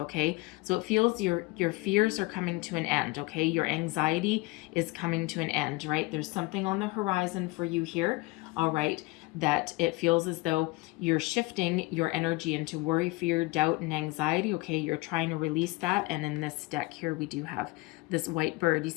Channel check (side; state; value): right; quieter; 22.6 dB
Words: So it feels your fears are coming to an end, okay? Your anxiety is coming to an end, right? There's something on the horizon for you here, all right, that it feels as though you're shifting your energy into worry, fear, doubt, and anxiety, okay? You're trying to release that, and in this deck here, we do have this white bird. You